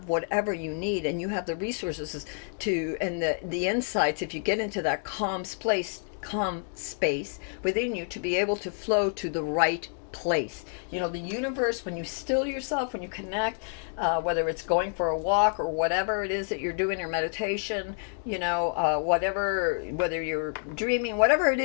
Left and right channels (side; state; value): right; silent; 57 dB below the other